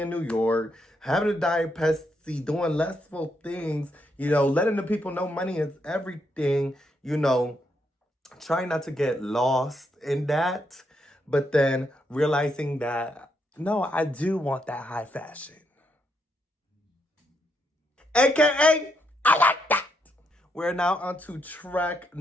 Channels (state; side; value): normal; both; correlation 0.78